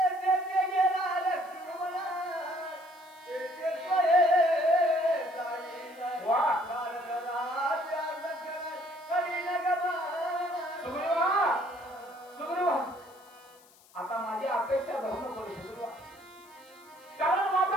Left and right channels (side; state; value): left; noise; hiss, 27 dB below the sound